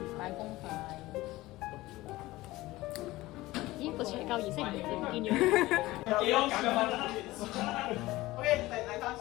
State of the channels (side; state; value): right; quieter; 18.5 dB